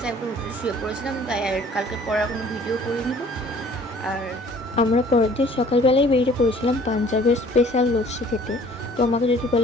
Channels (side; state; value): both; normal; correlation 0.53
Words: একবার হোটেলে শুয়ে পড়েছিলাম, তাই আর কালকে পড়ার কোনো ভিডিও করে নিব। আর আমরা পরের দিন সকালবেলায় বেরিয়ে পড়েছিলাম পাঞ্জাবের স্পেশাল লস্যি খেতে। তো আমাকে যদি